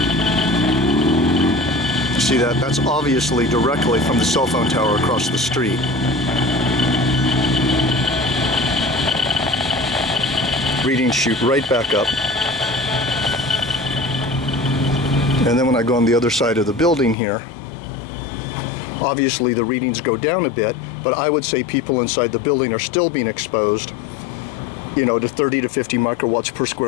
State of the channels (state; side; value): drops out; right; at 17.2 s